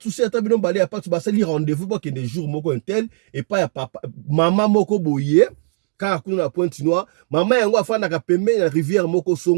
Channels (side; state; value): left; silent; digital silence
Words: souci, atabino balé, a pas de souci, rendez-vous pour qu'il y ait des jours moko un tel, et pas ya papa, maman moko boye, car à la pointe noire, maman yango a fait na pembe, la rivière moko